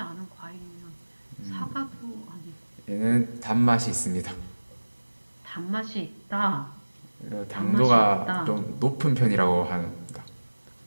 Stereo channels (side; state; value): both; inverted; correlation -1.00